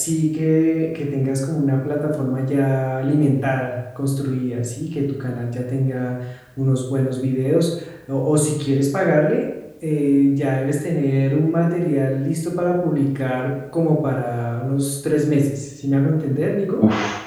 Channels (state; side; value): identical; both; correlation 1.00